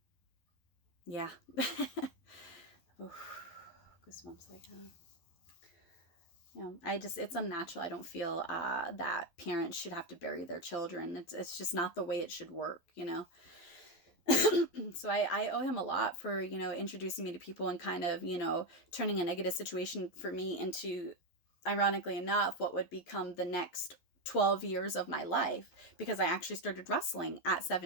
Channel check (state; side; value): late; right; 12 ms